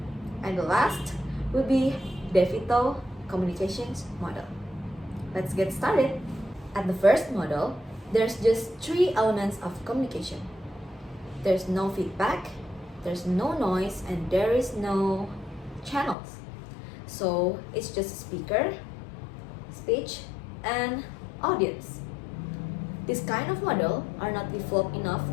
And the last will be DeVito communications model. Let's get started. At the first model, there's just three elements of communication. There's no feedback, there's no noise, and there is no channels. So it's just speaker, speech, and audience. This kind of model are not developed enough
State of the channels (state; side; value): drops out; right; at 16.2 s